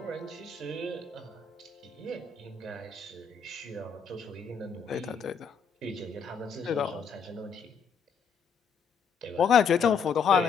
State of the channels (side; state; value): right; quieter; 6.0 dB